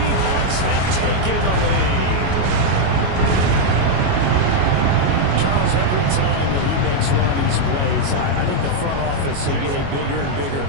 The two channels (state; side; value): late; left; 22 ms